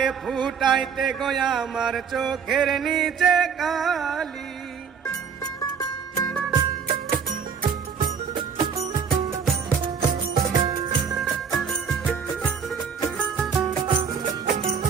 ফুটাইতে গয়া আমার চোখের নিচে কালি।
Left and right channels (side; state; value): left; quieter; 6.6 dB